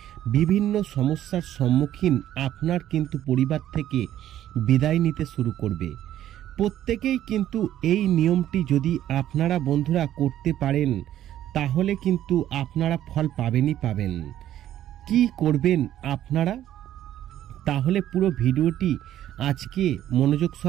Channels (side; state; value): left; quieter; 12.1 dB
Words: বিভিন্ন সমস্যার সম্মুখীন আপনার কিন্তু পরিবার থেকে বিদায় নিতে শুরু করবে। প্রত্যেকেই কিন্তু এই নিয়মটি যদি আপনারা বন্ধুরা করতে পারেন তাহলে কিন্তু আপনারা ফল পাবেন। কি করবেন আপনারা? তাহলে পুরো ভিডিওটি আজকে মনোযোগ